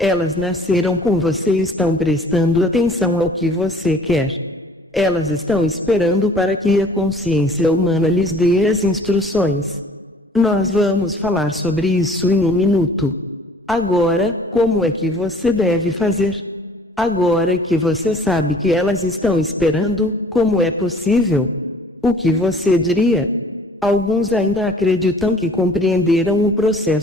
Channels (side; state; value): both; normal; correlation 0.52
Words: nasceram com você e estão prestando atenção ao que você quer. Elas estão esperando para que a consciência humana lhes dê as instruções. Nós vamos falar sobre isso em um minuto. Agora, como é que você deve fazer? Agora que você sabe que elas estão esperando, como é possível? O que você diria? Alguns ainda acreditam que compreenderam o